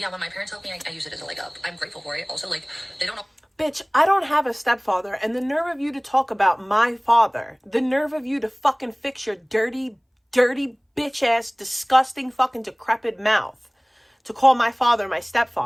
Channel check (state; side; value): identical; both; correlation 1.00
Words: when my parents helped me, I use it as a leg up. I'm grateful for it. Also, like, they don't know. Bitch, I don't have a stepfather, and the nerve of you to talk about my father, the nerve of you to fucking fix your dirty, bitch-ass, disgusting, fucking decrepit mouth to call my father my